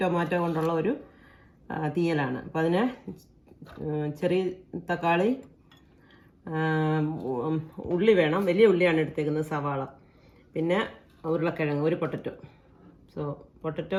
ടൊമാറ്റോ കൊണ്ടുള്ള ഒരു തീയലാണ്. അപ്പോൾ അതിന് ചെറിയ തക്കാളി, ഉള്ളി വേണം. വലിയ ഉള്ളിയാണ് എടുത്തേക്കുന്നത്, സവാള, പിന്നെ ഉരുളക്കിഴങ്ങ്, ഒരു പൊട്ടറ്റോ.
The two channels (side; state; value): both; identical; correlation 1.00